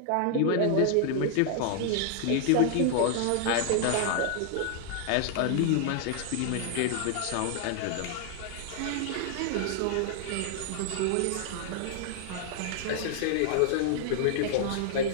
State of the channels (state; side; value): different; both; correlation 0.00